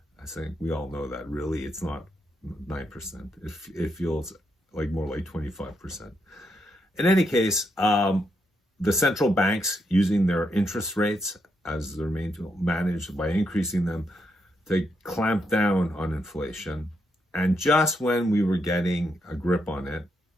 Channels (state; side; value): normal; both; correlation 0.80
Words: I think we all know that really it's not 9%. It feels like more like 25%. In any case, the central banks, using their interest rates as their main tool, managed by increasing them to clamp down on inflation. And just when we were getting a grip on it,